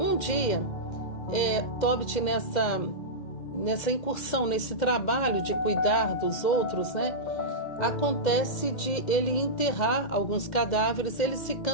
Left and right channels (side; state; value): right; late; 2.1 ms